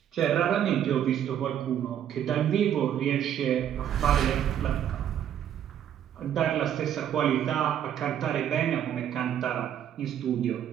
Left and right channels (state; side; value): quieter; left; 10.0 dB